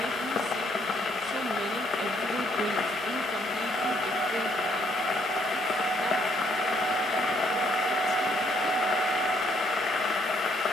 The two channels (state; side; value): normal; both; correlation 0.69